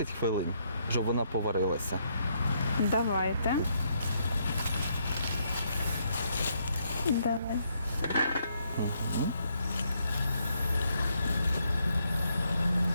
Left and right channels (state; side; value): inverted; both; correlation -0.74